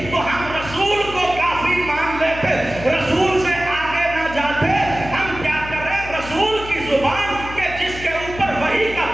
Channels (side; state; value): left; noise; hum, 12 dB below the sound